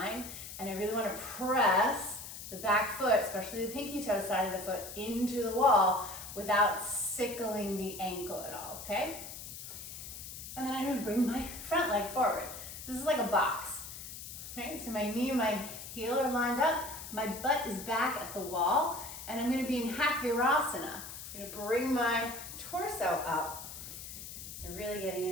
and I really wanna press the back foot, especially the pinky toe side of the foot, into the wall without sickling the ankle at all, okay? And then I'm gonna bring my front leg forward. This is like a box, right? So my knee and my heel are lined up, my butt is back at the wall, and I'm gonna be in half virasana. I'm gonna bring my torso up and really getting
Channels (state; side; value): noise; left; hiss, 10 dB below the sound